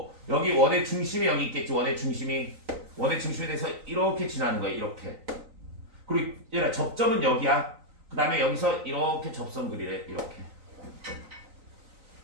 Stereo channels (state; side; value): late; left; 3.9 ms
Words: 여기 원의 중심이 여기 있겠지. 원의 중심에 대해서 이렇게 지나는 거야. 이렇게. 그리고 얘들아 접점은 여기야. 그 다음에 여기서 이렇게 접선 그리래. 이렇게